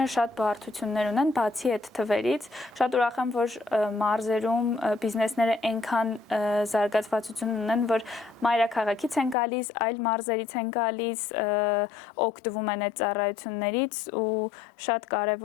շատ բարդություններ ունեն, բացի այդ թվերից, շատ ուրախ եմ, որ մարզերում բիզնեսները այնքան զարգացվածություն ունեն, որ մայրաքաղաքից են գալիս, այլ մարզերից են գալիս, օգտվում են այդ ծառայություններից ու շատ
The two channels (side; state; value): right; drops out; at 9.3 s